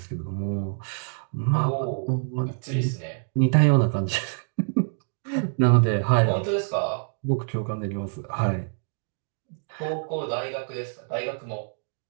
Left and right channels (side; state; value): left; silent; digital silence